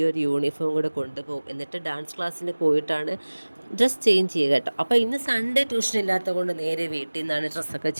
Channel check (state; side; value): inverted; both; correlation -1.00